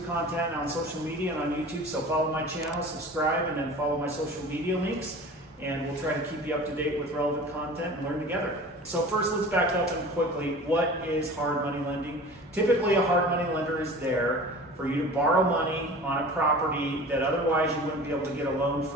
content on social media and on YouTube, so follow my channel, subscribe, and then follow my social media links. And we'll try to keep you up to date with relevant content and learn together. So first, let's back up and quickly, what is hard money lending? Typically, a hard money lender is there for you to borrow money on a property that otherwise you wouldn't be able to get a loan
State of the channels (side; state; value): both; normal; correlation 0.39